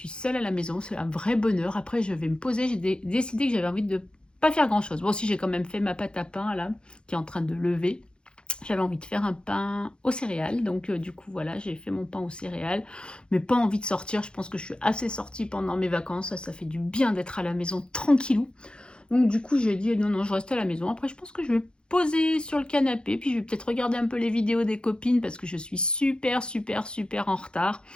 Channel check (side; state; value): right; late; 0.052 ms